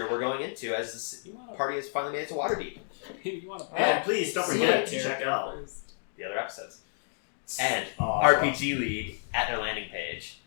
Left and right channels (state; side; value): silent; right; digital silence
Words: we're going into as this party has finally made it to Waterdeep. You want to And please don't forget to check out The other episodes. And Awesome. RPG League at their landing page.